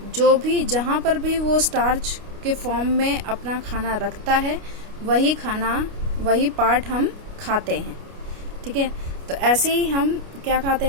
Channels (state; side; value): late; left; 29 ms